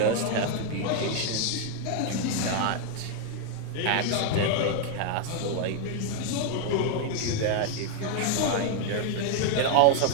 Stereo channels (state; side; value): different; both; correlation 0.00